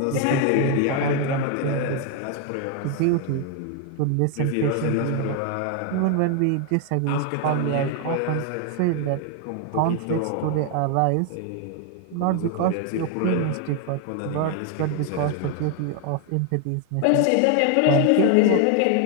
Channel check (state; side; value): different; both; correlation 0.01